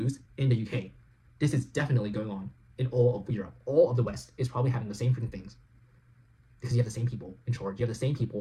in the UK, this is definitely going on in all of Europe. All of the West is probably having the same freaking things. Because you have the same people in charge. You have the same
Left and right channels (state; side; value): identical; both; correlation 1.00